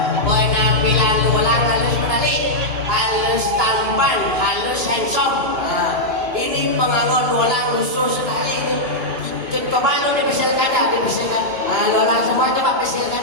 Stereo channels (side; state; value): left; late; 2.9 ms